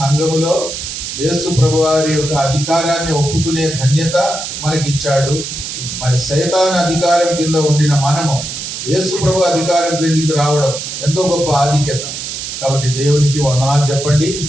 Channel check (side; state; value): right; noise; hiss, 6 dB below the sound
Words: యేసు ప్రభువారి యొక్క అధికారాన్ని ఒప్పుకునే ధన్యత మనకిచ్చాడు. మరి సైతాన్ అధికారం కింద ఉండిన మనము యేసు ప్రభు అధికారం క్రిందికి రావడం ఎంతో గొప్ప ఆధిక్యత. కాబట్టి దేవునికి వందనాలు చెప్పండి,